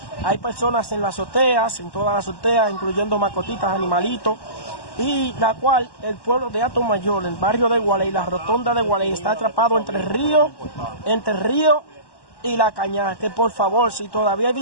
Hay personas en las azoteas, en todas las azoteas, incluyendo mascotitas, animalitos, y la cual el pueblo de Atomayor, el barrio de Gualey, la rotonda de Gualey, está atrapado entre el río y la Cañada. Que por favor, si todavía hay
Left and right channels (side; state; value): right; late; 1.1 ms